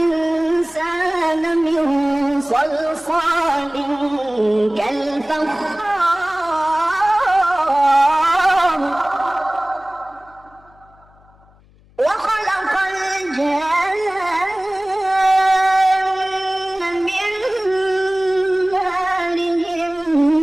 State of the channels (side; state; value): left; noise; hum, 29 dB below the sound